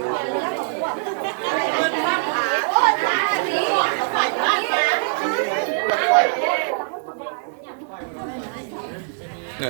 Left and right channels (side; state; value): left; silent; 59 dB below the other